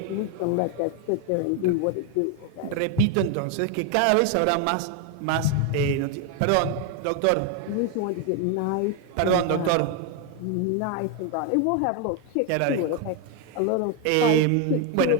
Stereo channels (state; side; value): different; both; correlation 0.01